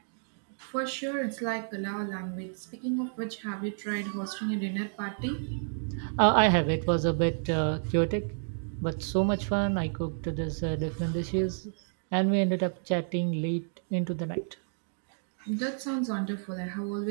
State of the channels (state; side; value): silent; left; digital silence